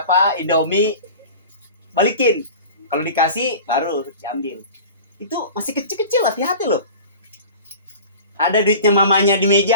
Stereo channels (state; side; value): inverted; both; correlation -0.38